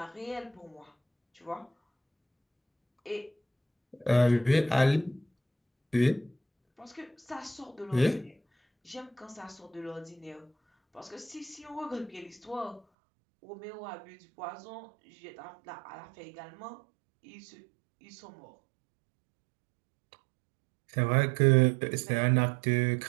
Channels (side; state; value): left; drops out; at 12.8 s